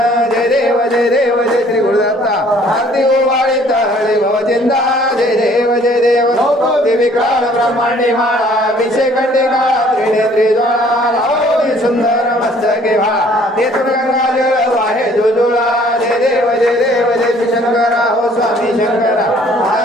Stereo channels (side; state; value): both; normal; correlation 0.58